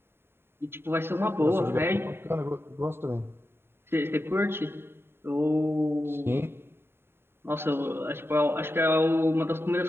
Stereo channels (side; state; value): left; late; 0.11 ms